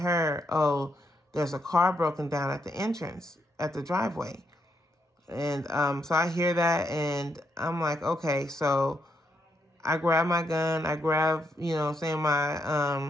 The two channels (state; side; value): normal; both; correlation 0.79